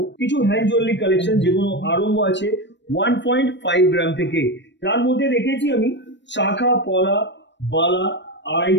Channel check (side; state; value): right; late; 0.52 ms